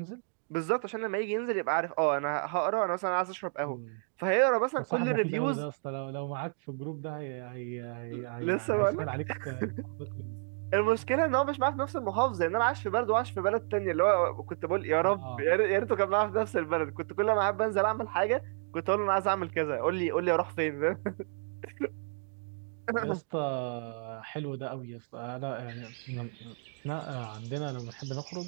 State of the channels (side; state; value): left; silent; 57 dB below the other